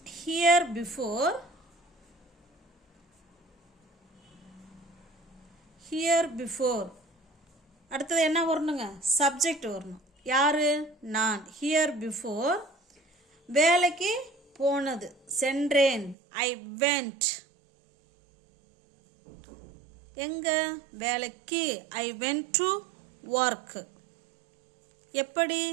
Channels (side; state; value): left; drops out; at 16.2 s